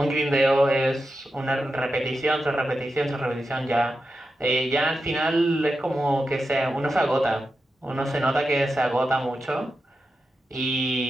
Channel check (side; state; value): both; normal; correlation 0.89